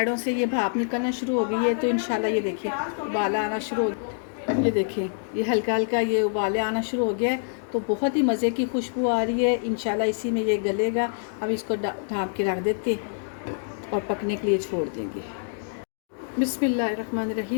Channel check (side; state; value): right; silent; digital silence